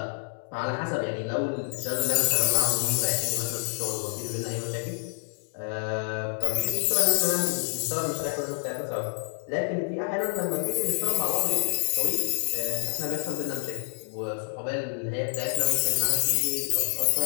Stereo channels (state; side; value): silent; right; digital silence